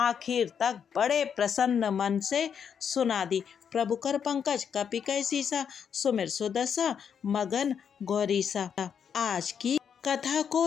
तक बड़े प्रसन्न मन से सुना दी। प्रभु कर पंकज कपि कै सीसा, सुमिर सुदशा मगन गौरीसा। आज की कथा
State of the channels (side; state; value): right; quieter; 7.5 dB